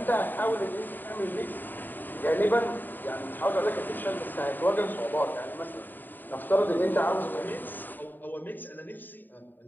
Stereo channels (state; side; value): late; right; 0.090 ms